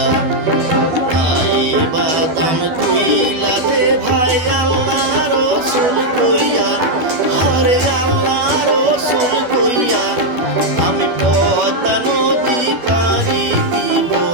বাদাম কইলা দে ভাই আল্লাহ রসুল কইয়া হরে আল্লাহ রসুল কইয়া আমি পদ্মা নদী পারি দিব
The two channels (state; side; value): late; left; 12 ms